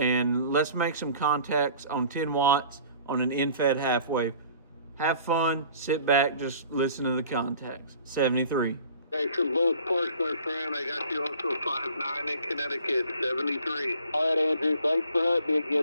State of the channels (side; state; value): both; inverted; correlation -0.50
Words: let's make some contacts on 10 watts on an end-fed half wave. Have fun, sit back, just listen to the contacts. 73. Thanks from both parts, my friend. I got you also 5'9" in Connecticut, 73. All right, Andrew. Thanks for hunting me